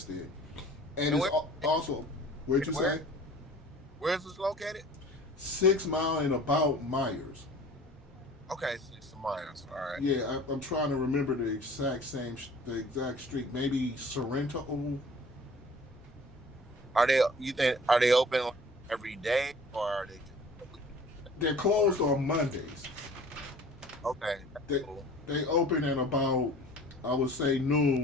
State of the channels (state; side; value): normal; both; correlation 0.47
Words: and And it's also where'd you where say where's this located? 6 Mile and about Myers. Okay, 6 miles. All right. Yeah, I'm trying to remember the exact street. Maybe Sorrento. Are they? You think are they open like every day or are they just a week? They're closed on Mondays. Okay, that's They cool. they open at about I would say